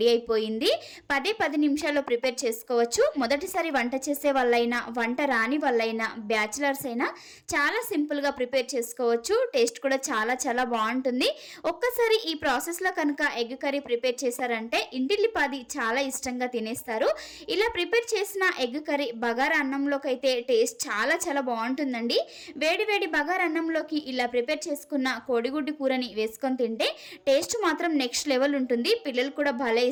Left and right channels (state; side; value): identical; both; correlation 1.00